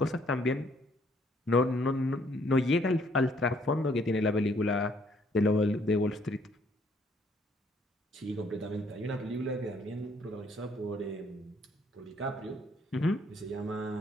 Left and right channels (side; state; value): both; normal; correlation 0.65